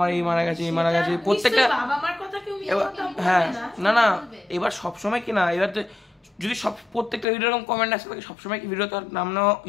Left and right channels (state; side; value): drops out; right; at 7.2 s